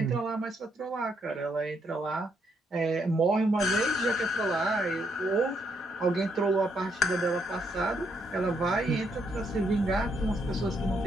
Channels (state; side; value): normal; both; correlation 0.75